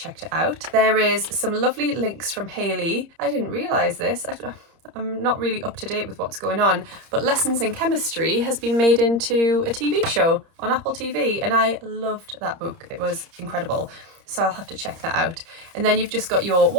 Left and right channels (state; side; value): late; left; 30 ms